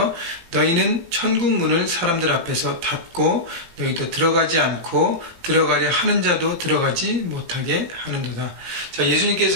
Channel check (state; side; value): late; left; 18 ms